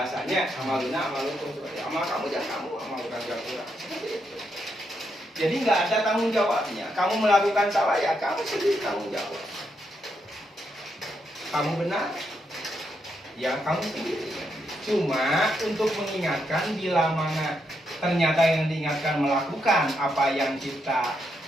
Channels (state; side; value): normal; both; correlation 0.80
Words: Amaluna amalukum seperti amal kamu jangan kamu, amal bukan kurang. Seperti itu. Jadi nggak ada tanggung jawabnya. Kamu melakukan salah ya kamu sendiri tanggung jawab. Kamu benar ya kamu sendiri. Cuma untuk mengingatkan bila mana ternyata yang diingatkan melakukan apa yang kita